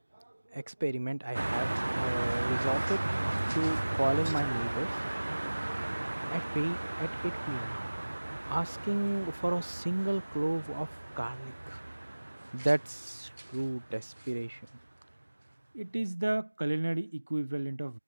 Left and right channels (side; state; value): both; inverted; correlation -1.00